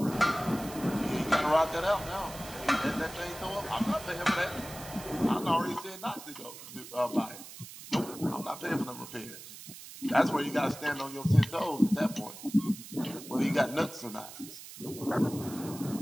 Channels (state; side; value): noise; right; hiss, 14 dB below the sound